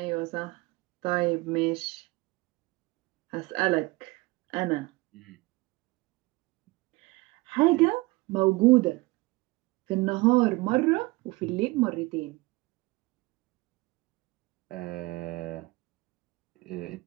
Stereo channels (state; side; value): quieter; left; 22.9 dB